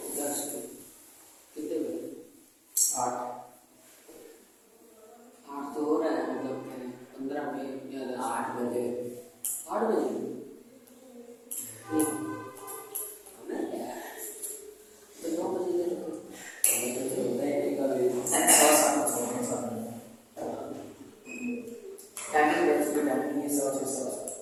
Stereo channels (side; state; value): both; identical; correlation 1.00